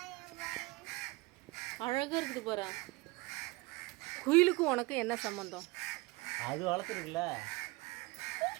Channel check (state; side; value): quieter; left; 23.8 dB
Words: அழகா இருக்குது பாரு. குயிலுக்கும் உனக்கு என்ன சம்பந்தம்? அது வளர்த்துருக்குல்ல,